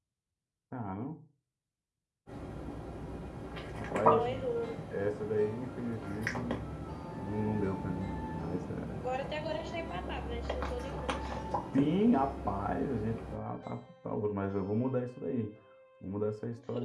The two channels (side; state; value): both; identical; correlation 1.00